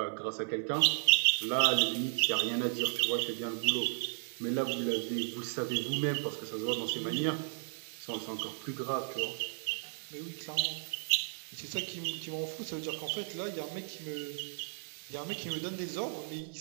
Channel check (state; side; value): silent; left; digital silence